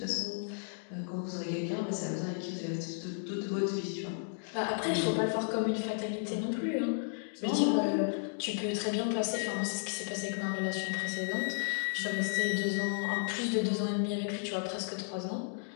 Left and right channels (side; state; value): right; silent; digital silence